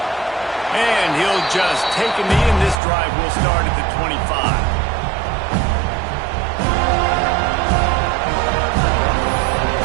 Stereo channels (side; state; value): left; drops out; at 2.8 s